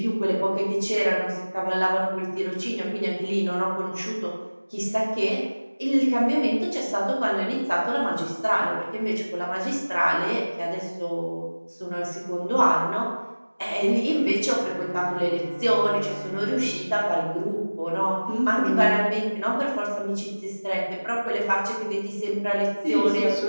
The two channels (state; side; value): inverted; both; correlation -1.00